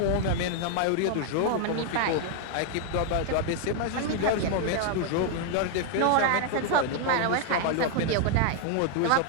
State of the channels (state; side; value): different; both; correlation 0.00